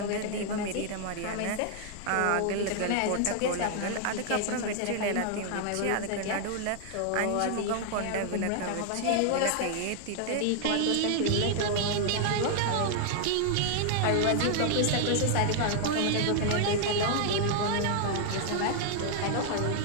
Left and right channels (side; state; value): both; different; correlation 0.00